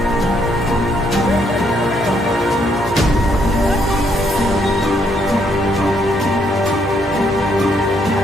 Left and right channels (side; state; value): both; normal; correlation 0.72